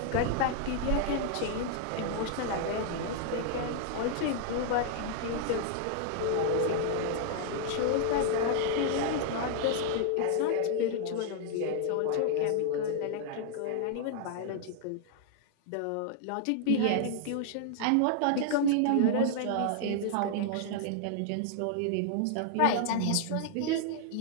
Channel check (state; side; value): different; both; correlation -0.01